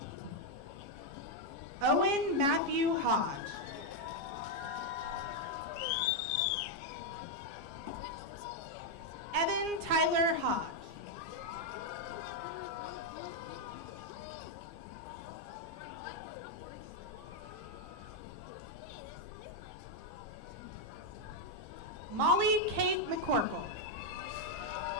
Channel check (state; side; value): late; left; 15 ms